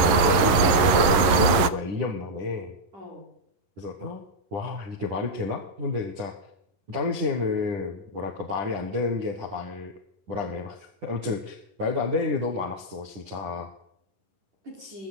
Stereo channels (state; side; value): late; left; 11 ms